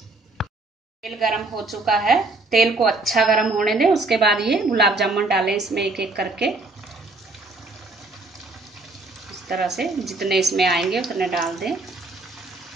तेल गरम हो चुका है, तेल को अच्छा गरम होने दें। उसके बाद ये गुलाब जामुन डालें इसमें एक एक करके। इस तरह से जितने इसमें आएंगे उतने डाल दें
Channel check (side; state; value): left; quieter; 3.2 dB